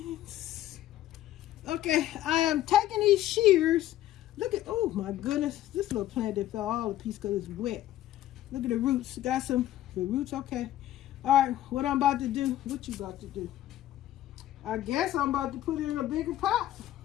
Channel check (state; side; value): quieter; right; 13.5 dB